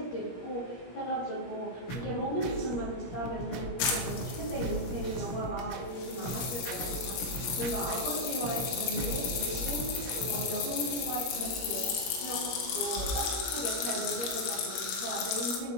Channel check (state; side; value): late; right; 17 ms